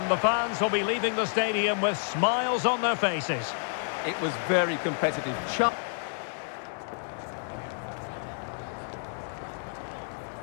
the fans will be leaving the stadium with smiles on their faces. It was very competitive.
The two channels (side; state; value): right; silent; 58 dB below the other